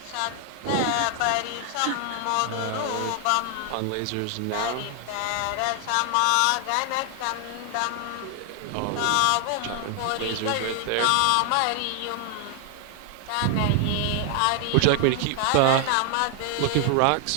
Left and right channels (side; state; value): both; different; correlation 0.00